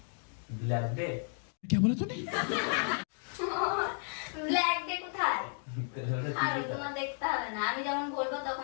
Black day? क्या बोला तूने? ব্ল্যাক ডে কোথায়? আর তোমার দেখতে হবে না, আমি যখন বলবো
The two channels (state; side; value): silent; right; 56 dB below the other